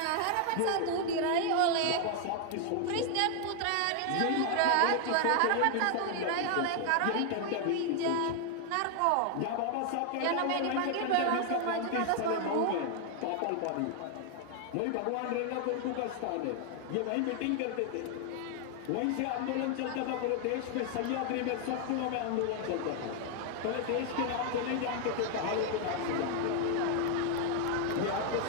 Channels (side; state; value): both; different; correlation 0.00